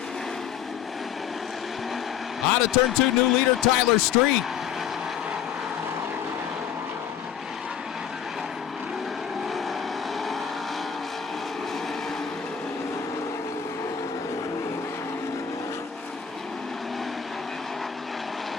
Out of turn 2, new leader Tyler Street.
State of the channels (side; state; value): right; quieter; 8.4 dB